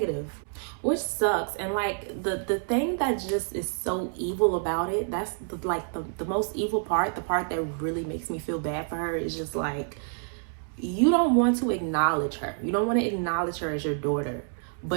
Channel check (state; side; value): silent; left; 59 dB below the other